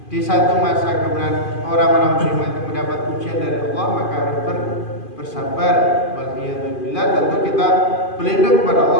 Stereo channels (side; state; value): right; late; 2.5 ms